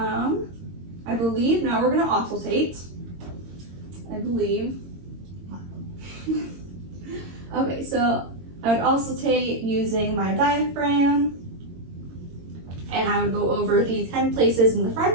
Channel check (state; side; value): late; left; 22 ms